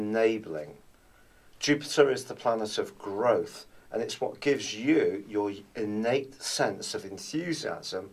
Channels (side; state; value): both; identical; correlation 1.00